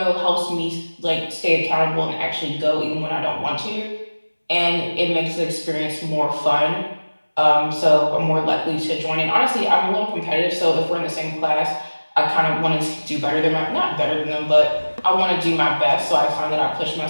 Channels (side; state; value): both; inverted; correlation -1.00